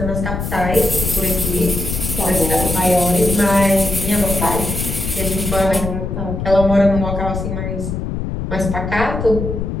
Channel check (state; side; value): noise; left; rumble, 4 dB below the sound